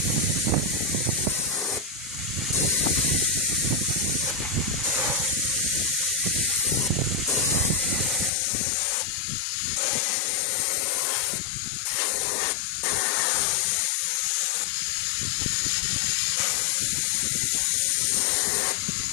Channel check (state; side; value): drops out; right; at 8.3 s